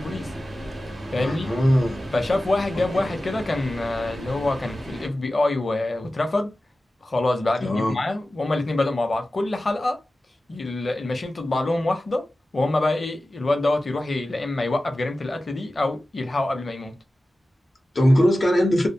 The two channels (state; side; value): normal; both; correlation 0.95